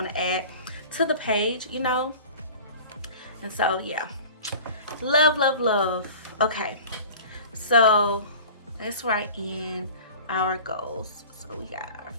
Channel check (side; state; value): both; inverted; correlation -0.41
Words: to add to the page, you know. And so yeah, love, love, love. Okay, so let's write in our goals. So we got our